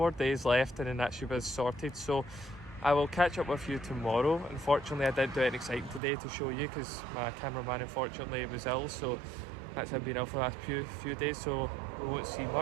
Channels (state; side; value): drops out; left; at 6.0 s